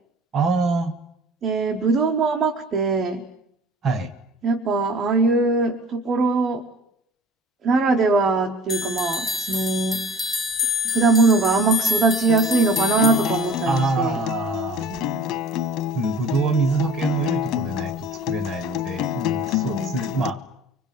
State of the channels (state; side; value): normal; both; correlation 0.43